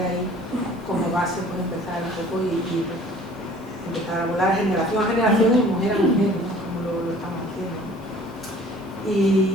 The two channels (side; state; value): both; normal; correlation 0.51